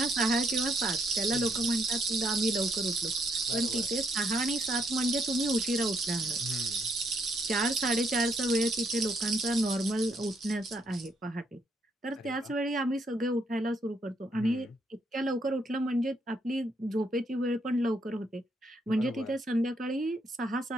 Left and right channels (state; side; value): normal; both; correlation 0.74